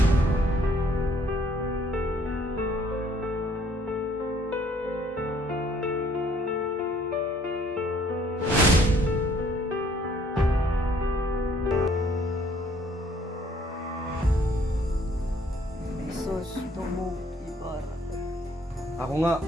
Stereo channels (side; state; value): both; normal; correlation 0.62